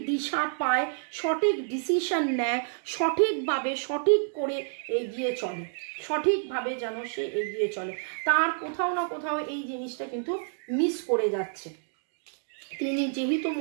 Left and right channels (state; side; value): silent; left; digital silence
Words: দিশা পায়, সঠিক ডিসিশন নেয়, সঠিকভাবে সঠিক করে এগিয়ে চলে, সঠিকভাবে যেন সে এগিয়ে চলে। তার কোথাও না কোথাও এই জিনিসটা কিন্তু মিস করে যাচ্ছে। তিনি যেহেতু